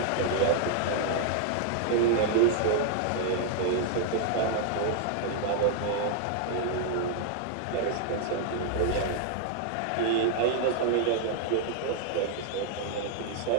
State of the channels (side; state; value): both; different; correlation -0.01